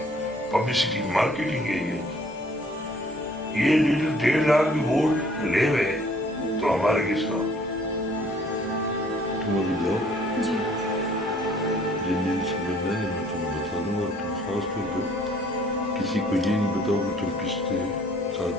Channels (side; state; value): both; normal; correlation 0.58